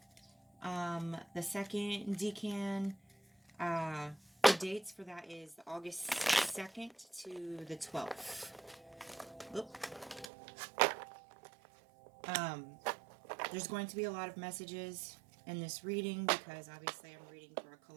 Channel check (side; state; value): left; drops out; at 10.3 s